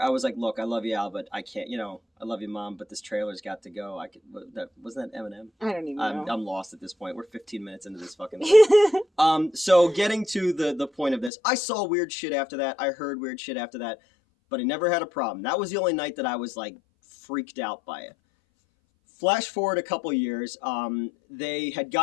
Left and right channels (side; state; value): right; drops out; at 11.3 s